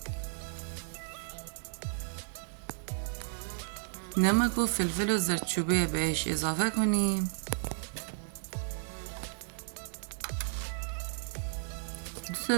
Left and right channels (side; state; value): left; silent; digital silence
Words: نمک و فلفل و زردچوبه بهش اضافه کنیم.